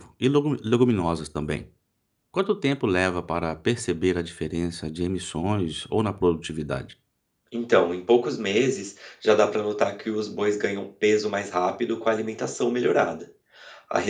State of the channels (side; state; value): both; identical; correlation 1.00